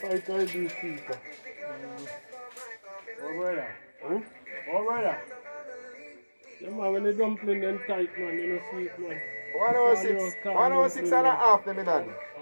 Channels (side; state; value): both; inverted; correlation -1.00